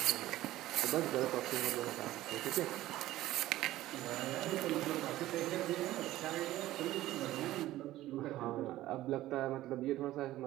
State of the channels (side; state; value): left; quieter; 15.4 dB